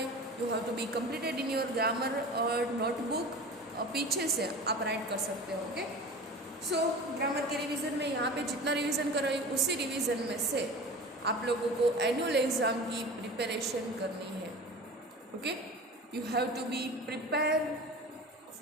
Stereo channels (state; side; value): normal; both; correlation 0.35